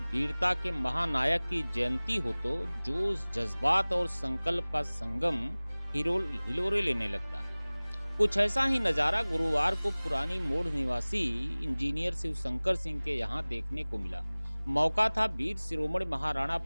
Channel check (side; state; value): both; inverted; correlation -1.00